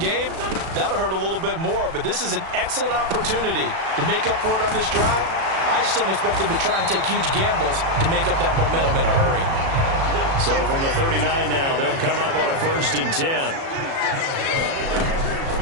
that'll hurt a little bit more. But this is an excellent opportunity to make up for it on this drive. I just don't expect them to try and take huge gambles to make up that momentum in a hurry. So from the 39 now, they'll come up on a 1st and 10.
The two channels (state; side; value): late; left; 36 ms